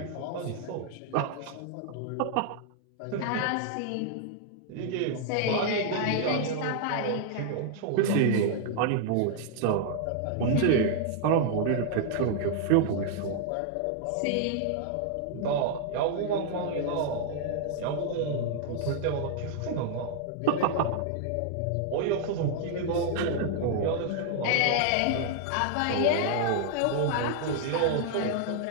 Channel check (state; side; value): different; both; correlation 0.00